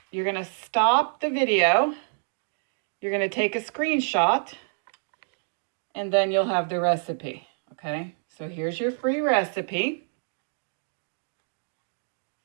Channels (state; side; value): silent; left; digital silence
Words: to stop the video. You're going to take a screenshot, and then you'll have the recipe, okay? So here's your free recipe.